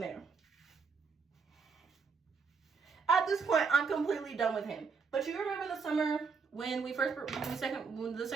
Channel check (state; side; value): quieter; left; 5.2 dB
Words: At this point, I'm completely done with him. But you remember the summer when the